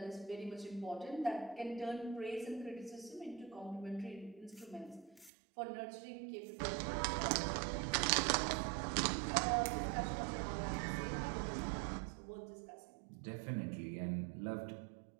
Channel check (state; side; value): drops out; left; at 5.3 s